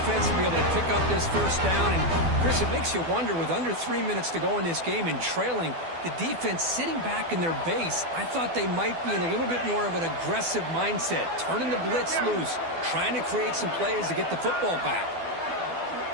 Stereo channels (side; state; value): left; late; 12 ms